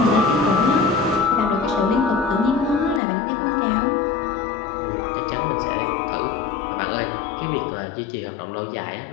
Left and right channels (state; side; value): drops out; right; at 3.0 s